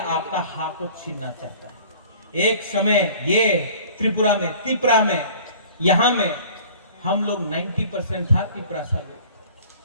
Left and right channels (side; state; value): both; inverted; correlation -0.48